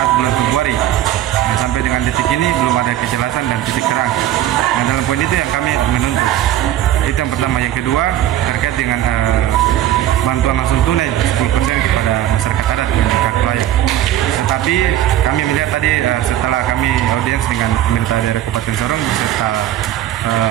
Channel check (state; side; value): quieter; left; 12.6 dB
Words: bulan Februari. Nah, sampai dengan detik ini belum ada kejelasan dan titik terang. Nah, dalam poin itu yang kami menuntut. Itu yang pertama. Yang kedua, terkait dengan bantuan langsung tunai 10% kepada masyarakat adat dan hak layak. Tetapi kami melihat tadi setelah kami audiens dengan pemerintah daerah Kabupaten Sorong beserta